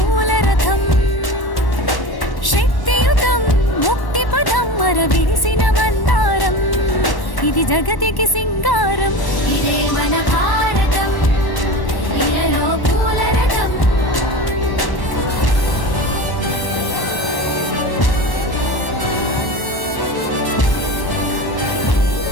రథం. శక్తియుతం ముక్తి పదం మర విరిసిన మందారం, ఇది జగతికి సింగారం. ఇదే మన భారతం, ఇలలో పూల రథం.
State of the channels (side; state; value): right; late; 1.1 ms